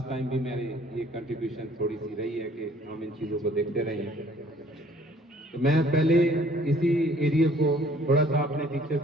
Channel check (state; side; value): normal; both; correlation 0.57